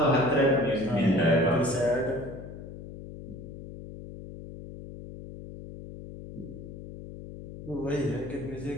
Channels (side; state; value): left; noise; hum, 12 dB below the sound